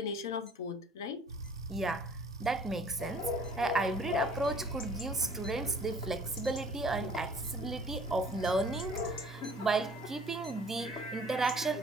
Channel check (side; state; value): both; normal; correlation 0.53